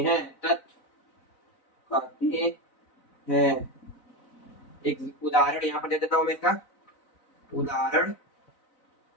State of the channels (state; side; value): late; right; 4.0 ms